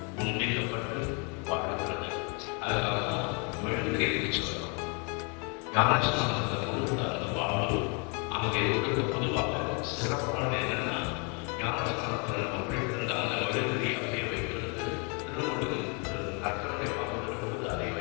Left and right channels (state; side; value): quieter; right; 34.9 dB